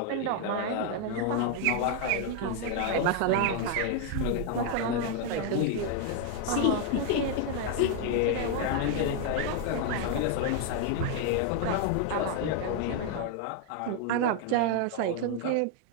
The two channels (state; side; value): different; both; correlation 0.00